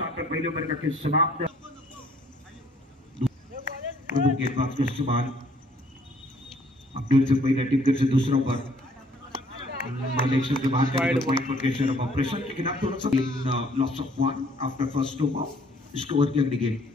पर पहले ओवर का खेल समाप्त गेंदबाज को सवाल अपडेट से पहले टीम से दूसरा ओवर मलेशिया के बाहर के पॉइंट पर केशर ऑपरेशन के खिलाफ थोड़ा सा loss of 1 after first over इसको ओवर की अगली गेंद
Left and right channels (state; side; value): normal; both; correlation 0.61